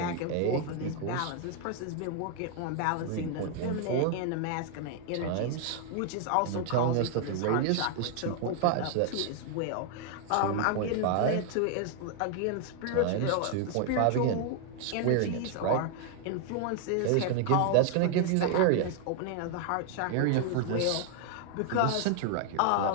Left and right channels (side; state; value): both; different; correlation 0.00